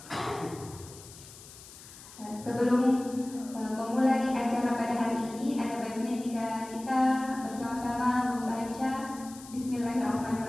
Sebelum memulai acara pada hari ini, ada baiknya jika kita bersama-sama membaca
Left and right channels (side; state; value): left; noise; hiss, 18 dB below the sound